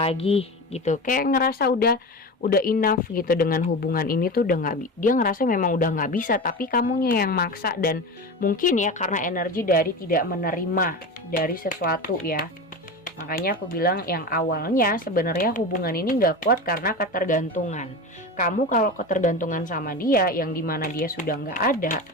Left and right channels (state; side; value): normal; both; correlation 0.26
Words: gitu, kayak ngerasa udah enough gitu dengan hubungan ini tuh udah dia ngerasa memang udah nggak bisa, tapi kamunya yang maksa. Dan mungkin ya karena energi dari tidak menerima dari sesuatu ya. Makanya aku bilang yang awalnya sebenarnya hubungan ini nggak kuat karena ketergantungan. Kamu kalau ketergantungan sama dia yang dimana dia sudah nggak ada,